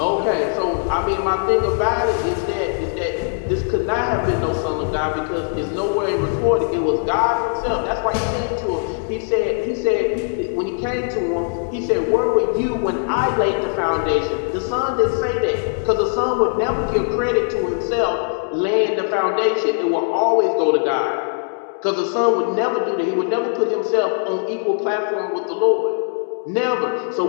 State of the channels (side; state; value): right; silent; 61 dB below the other